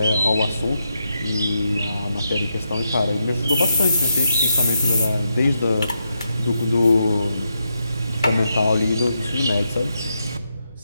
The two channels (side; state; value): both; inverted; correlation -0.83